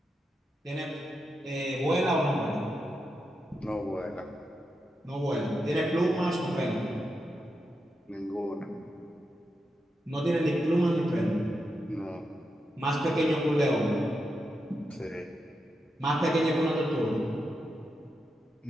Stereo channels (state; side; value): normal; both; correlation 0.86